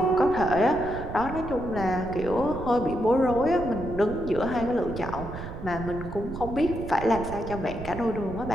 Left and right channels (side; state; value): right; noise; rumble, 10 dB below the sound